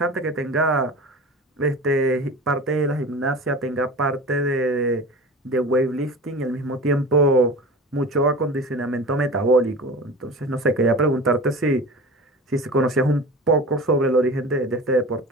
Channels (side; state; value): both; normal; correlation 0.35